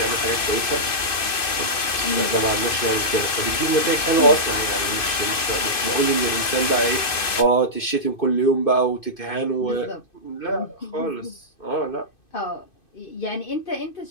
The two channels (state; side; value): late; right; 2.6 ms